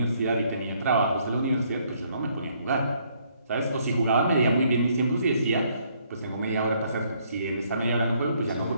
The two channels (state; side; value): inverted; both; correlation -0.68